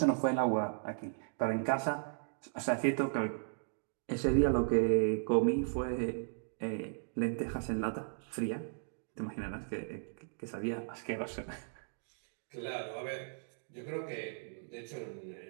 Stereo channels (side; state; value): left; silent; digital silence